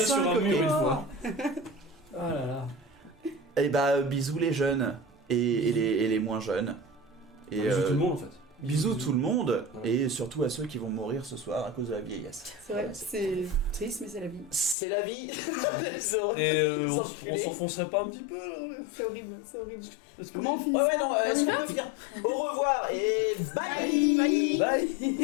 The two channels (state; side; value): drops out; right; at 14.8 s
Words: sur un mur une fois. Oh là là. Et bah, bisous les jeunes et les moins jeunes. Et Bisous tout le monde en fait. bisous tout le monde et surtout à ceux qui vont mourir ce soir à cause de la vieillesse. C'est vrai, c'est triste, mais c'est la vie. C'est la vie. Les Et les on enculés. s'enfoncerait pas un petit peu là. C'est horrible, c'est horrible. Parce que- Comment on finit Ouais, ça ouais, non, est-ce qu'on peut finir? Au revoir et bye.